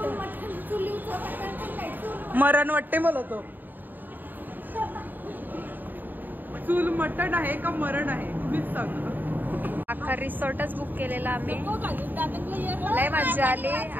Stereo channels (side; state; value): left; late; 0.089 ms